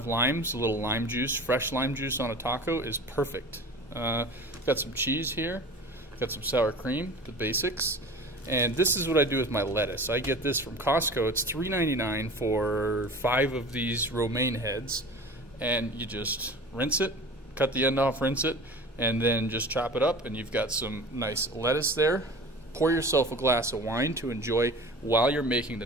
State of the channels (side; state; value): both; normal; correlation 0.38